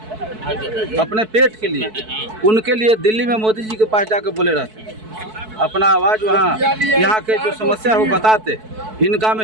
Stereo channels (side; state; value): left; late; 4.6 ms